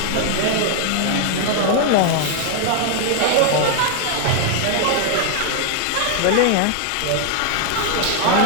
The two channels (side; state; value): both; different; correlation 0.00